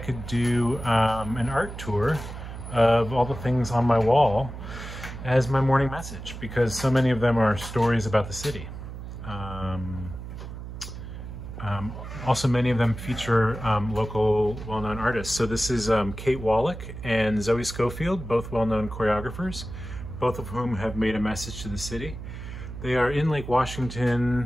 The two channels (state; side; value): noise; right; hum, 10 dB below the sound